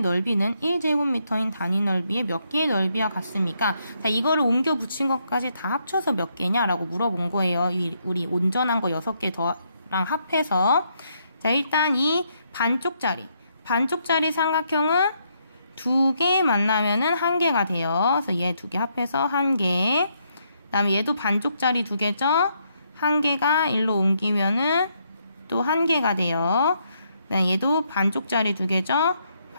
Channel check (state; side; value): inverted; both; correlation -0.75